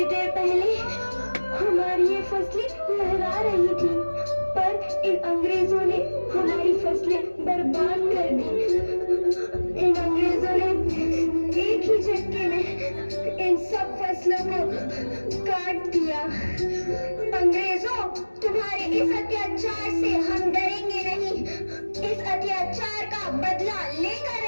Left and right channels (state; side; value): inverted; both; correlation -1.00